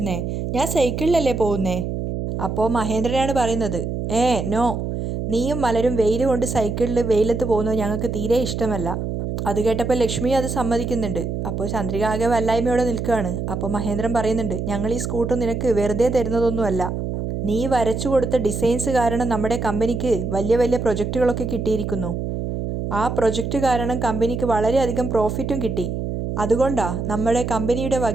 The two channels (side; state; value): right; noise; hum, 3 dB below the sound